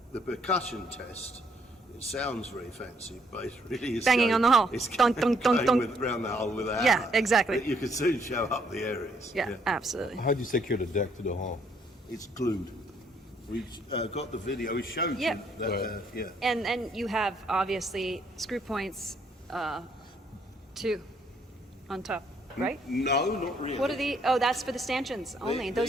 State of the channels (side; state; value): both; normal; correlation 0.69